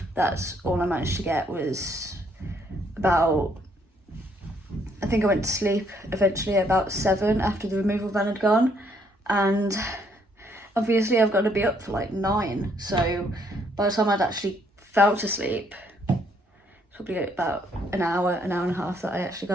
That's all I managed to get was about, I think I went to sleep eventually about 7 after the removal van had gone, and obviously I've got to be up for like 9, so by the time I'd actually fell to sleep, it's probably about an hour and a half that I actually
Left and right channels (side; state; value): both; normal; correlation 0.69